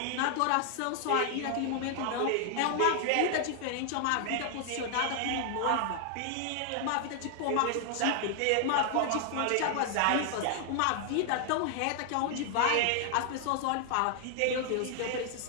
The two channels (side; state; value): both; different; correlation 0.00